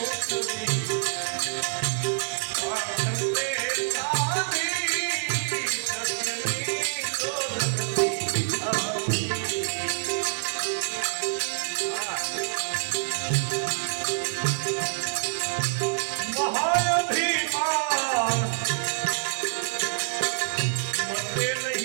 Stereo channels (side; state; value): left; silent; digital silence